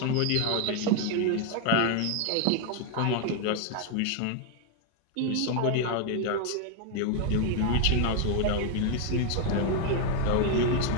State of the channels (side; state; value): both; different; correlation 0.01